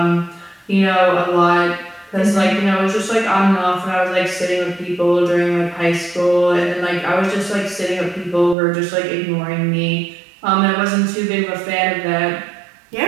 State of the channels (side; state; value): left; drops out; at 8.6 s